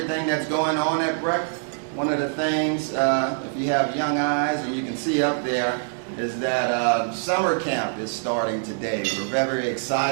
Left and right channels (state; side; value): silent; left; digital silence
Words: that's going on at BREC. One of the things, if you have young eyes and you can see up there, is that summer camp is starting today. We're very